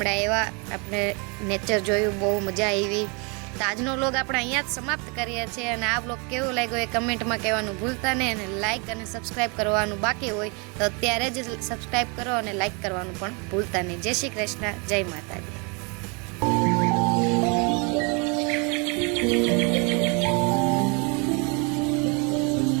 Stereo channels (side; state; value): left; quieter; 32.6 dB